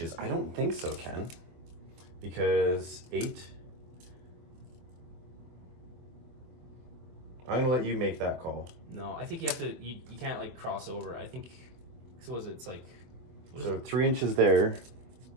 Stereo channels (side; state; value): left; late; 24 ms